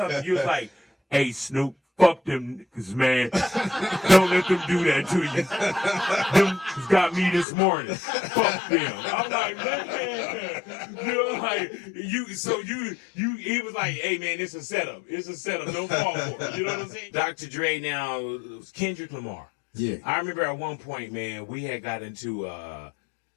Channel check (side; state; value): right; drops out; at 7.5 s